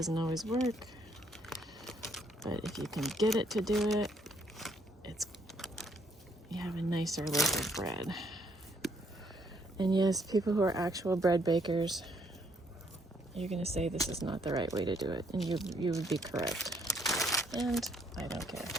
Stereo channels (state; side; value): normal; both; correlation 0.69